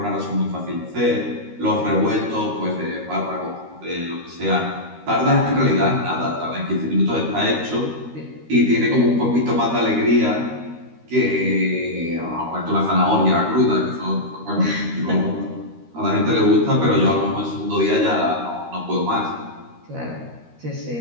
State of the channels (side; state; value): left; late; 13 ms